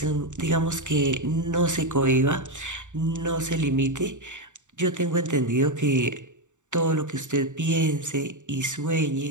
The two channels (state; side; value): late; left; 0.85 ms